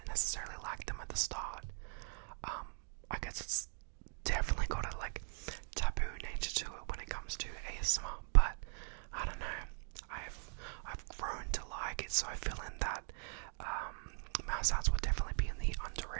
necessarily like them at the start. I guess it's definitely got a taboo nature to it when it comes to ASMR, but I don't know. I've grown to like it, so I feel in that mouth sounds would definitely be in the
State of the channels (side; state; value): left; silent; 51 dB below the other